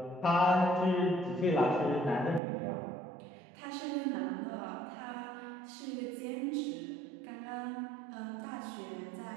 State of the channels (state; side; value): drops out; left; at 2.4 s